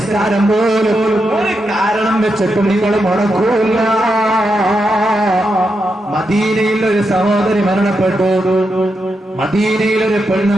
പോലും ഒരു കാരണം വെച്ചിട്ടും നിങ്ങൾ മുടക്കൂല. മദീനയിൽ ഒരു സഹോദരി മരണപ്പെട്ടു. മദീനയിൽ ഒരു പെണ്ണ്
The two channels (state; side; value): normal; both; correlation 0.85